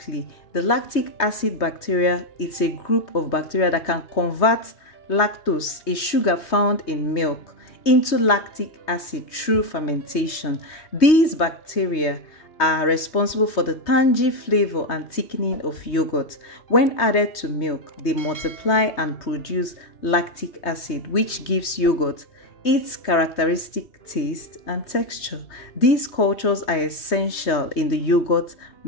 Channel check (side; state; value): right; late; 3.2 ms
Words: the lactic acid bacteria, it's a group of bacteria that can convert lactose, a sugar found in milk, into lactic acid through fermentation. These bacteria are responsible for the tangy flavor and thickening of yogurt. When added to milk, they multiply and produce lactic acid, which gives yogurt its characteristic taste and texture. These cultures are essential in the yogurt